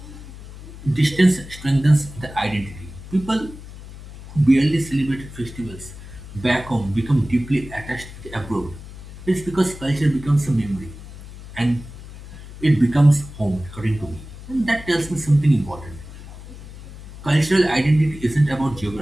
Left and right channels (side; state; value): left; noise; hum, 15 dB below the sound